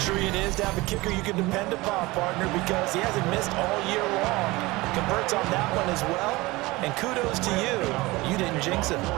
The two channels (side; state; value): left; quieter; 21.3 dB